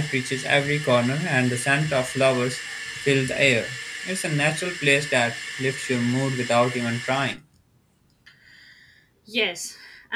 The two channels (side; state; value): both; identical; correlation 1.00